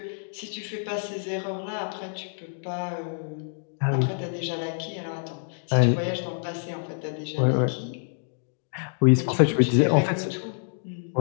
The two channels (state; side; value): silent; right; digital silence